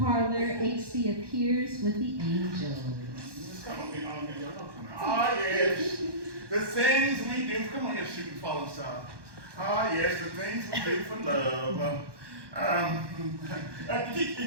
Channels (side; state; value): left; late; 1.2 ms